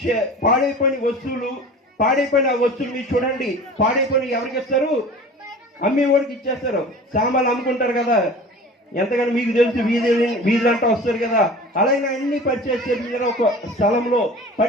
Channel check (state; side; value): normal; both; correlation 0.39